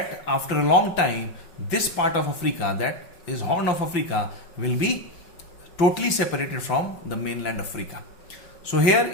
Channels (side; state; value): right; late; 5.4 ms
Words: after a long time this part of Africa, that is Horn of Africa, will be totally separated from the mainland Africa. So here